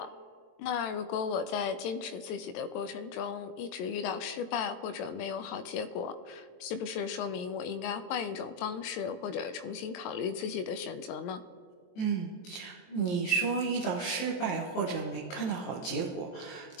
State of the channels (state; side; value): late; right; 23 ms